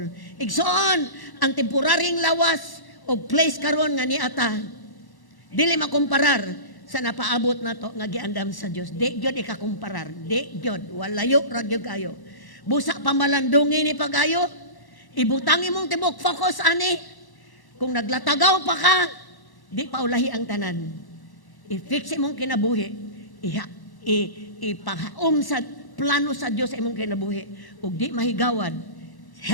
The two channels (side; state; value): right; late; 1.1 ms